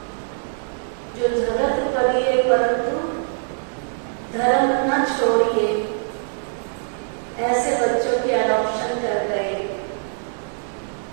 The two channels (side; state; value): left; silent; digital silence